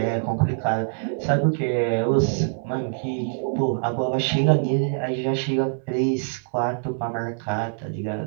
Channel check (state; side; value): silent; left; digital silence